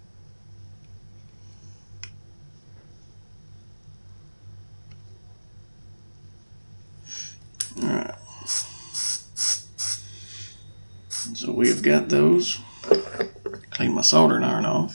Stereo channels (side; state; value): both; inverted; correlation -1.00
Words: Alright. So we have got those. Clean my soldering iron off.